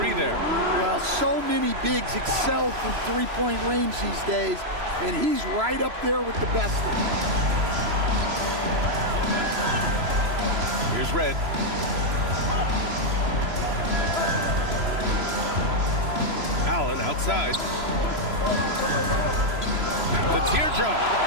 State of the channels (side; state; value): left; late; 3.0 ms